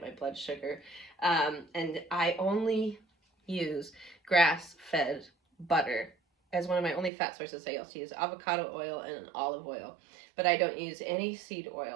my blood sugar. And I only use grass-fed butter as one of my only fat sources. I also use avocado oil and olive oil, but I don't use any seed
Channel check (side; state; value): left; drops out; at 7.1 s